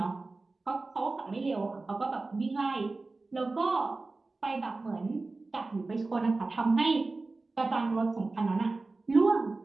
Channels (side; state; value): left; quieter; 3.5 dB